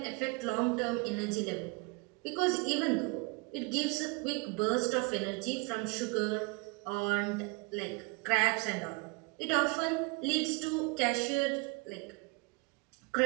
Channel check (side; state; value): left; quieter; 28.2 dB